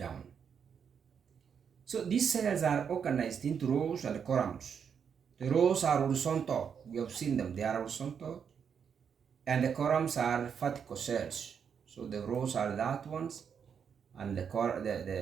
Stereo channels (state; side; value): quieter; left; 7.2 dB